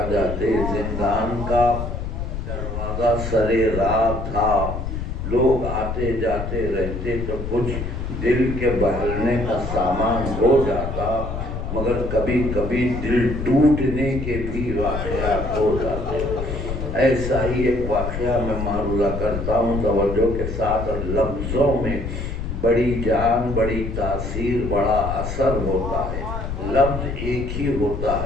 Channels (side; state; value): left; noise; rumble, 5 dB below the sound